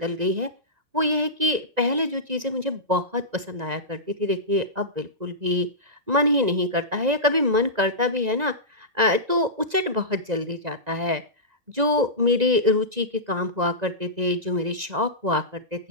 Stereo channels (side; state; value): left; late; 1.9 ms